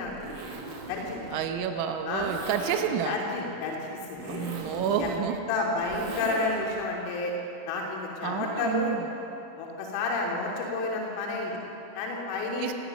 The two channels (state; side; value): late; right; 33 ms